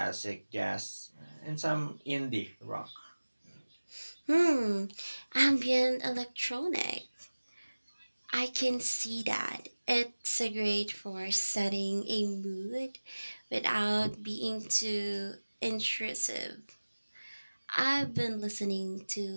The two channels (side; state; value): both; inverted; correlation -1.00